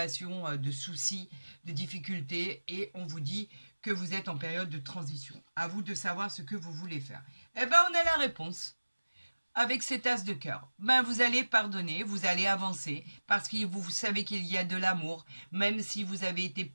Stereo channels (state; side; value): inverted; both; correlation -1.00